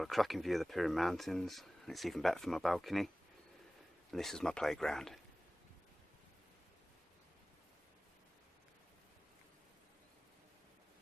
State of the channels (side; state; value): both; normal; correlation 0.98